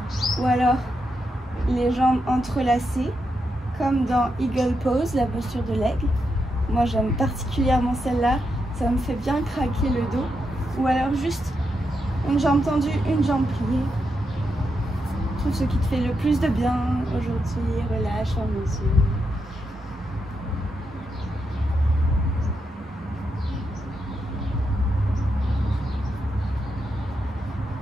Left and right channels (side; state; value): both; normal; correlation 0.84